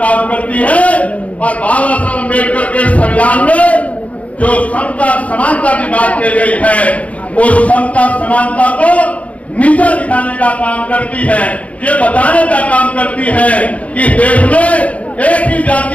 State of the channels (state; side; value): late; right; 0.066 ms